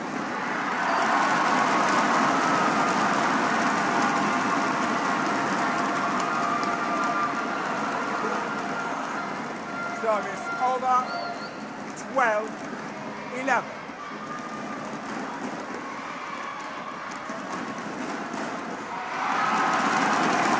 Service over, 12, 11.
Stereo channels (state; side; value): identical; both; correlation 1.00